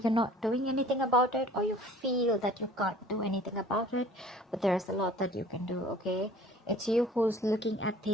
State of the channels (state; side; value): normal; both; correlation 0.50